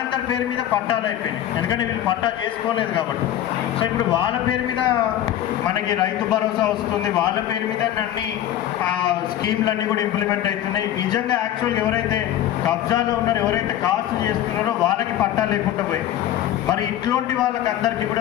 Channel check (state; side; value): quieter; right; 12.0 dB